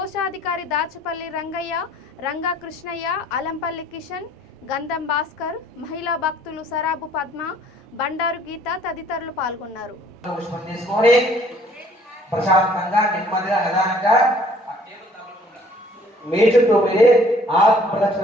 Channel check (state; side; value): normal; both; correlation 0.57